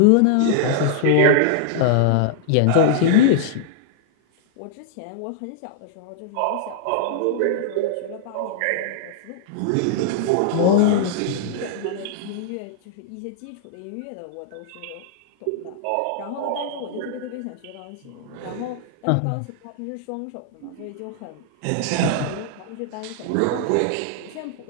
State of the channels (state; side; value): different; both; correlation -0.01